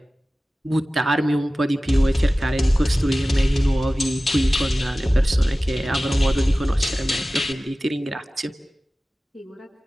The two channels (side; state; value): both; normal; correlation 0.97